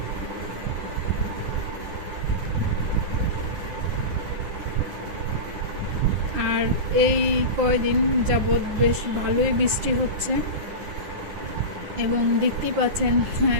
আর এই কয়দিন যাবৎ বেশ ভালোই বৃষ্টি হচ্ছে এবং দেখতেই পাচ্ছেন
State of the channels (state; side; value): late; left; 9.8 ms